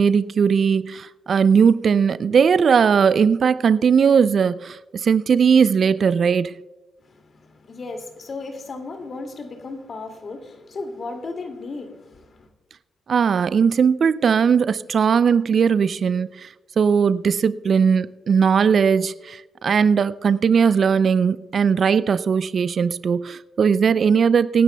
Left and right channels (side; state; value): left; quieter; 6.1 dB